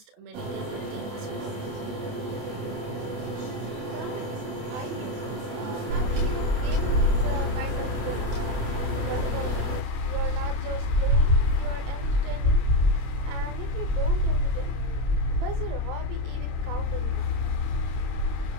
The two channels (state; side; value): late; left; 28 ms